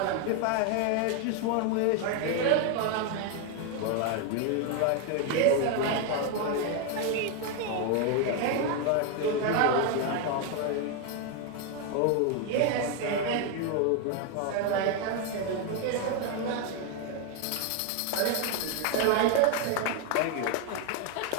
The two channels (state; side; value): different; both; correlation 0.01